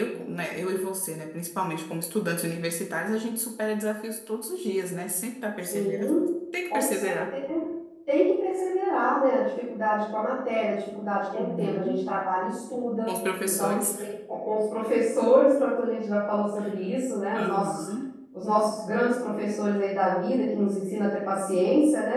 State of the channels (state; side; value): identical; both; correlation 1.00